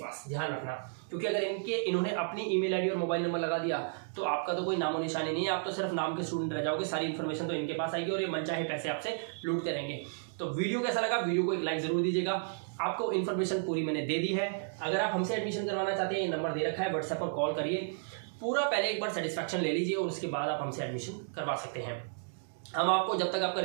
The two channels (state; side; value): silent; left; digital silence